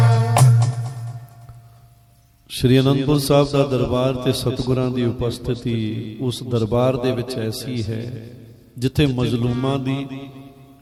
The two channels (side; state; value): both; identical; correlation 1.00